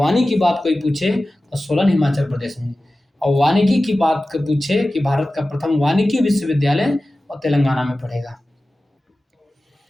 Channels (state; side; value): normal; both; correlation 0.95